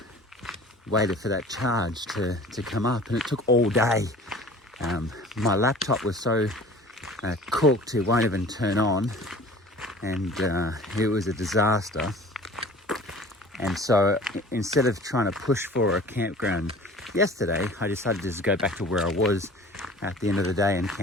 waited for that charge to come up, and it took all day. My laptop was so cooked it won't even turn on, and it was a disaster. And so instead of trying to push for a campground yesterday, I decided to just go back to where I was at the end of the day and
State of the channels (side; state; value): both; normal; correlation 0.44